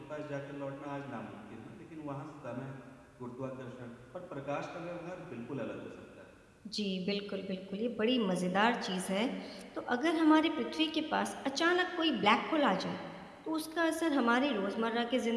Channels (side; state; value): both; identical; correlation 1.00